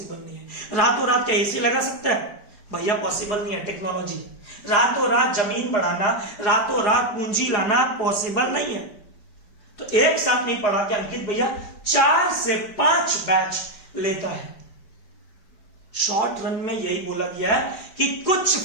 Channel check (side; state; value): right; late; 4.8 ms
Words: नहीं है। रातों रात क्या एसी लगा सकता है? भैया पॉसिबल नहीं है। टेक्नोलॉजी, रातों रात जमीन बढ़ाना, रातों रात पूंजी लाना पॉसिबल नहीं है। तो एक साथ नहीं पढ़ा के अंकित भैया 4 से 5 बैच लेता है। शॉर्ट रन में यही बोला गया है कि कुछ